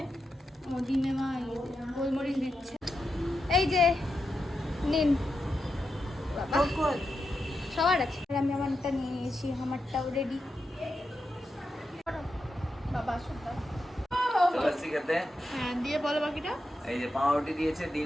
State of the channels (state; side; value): normal; both; correlation 0.87